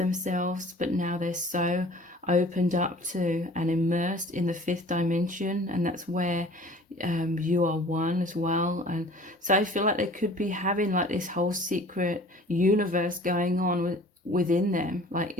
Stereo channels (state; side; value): normal; both; correlation 0.47